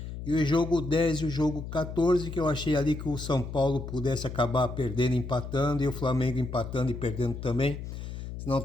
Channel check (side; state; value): left; noise; hum, 8 dB below the sound